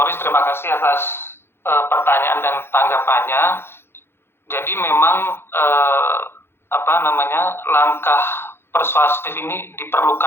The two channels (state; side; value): late; right; 0.11 ms